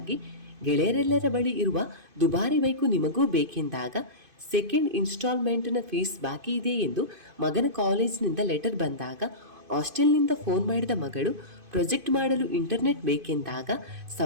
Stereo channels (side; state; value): left; late; 2.5 ms